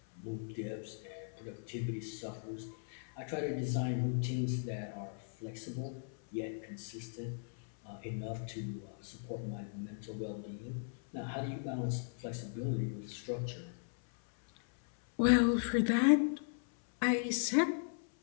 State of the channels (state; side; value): silent; right; 53 dB below the other